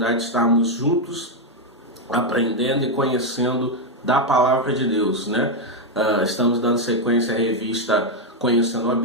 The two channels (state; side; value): normal; both; correlation 0.02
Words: de estarmos juntos aprendendo e conhecendo da palavra de Deus, né? Estamos dando sequência à revista Conhecendo a